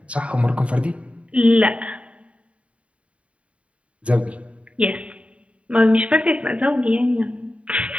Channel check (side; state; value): left; late; 0.063 ms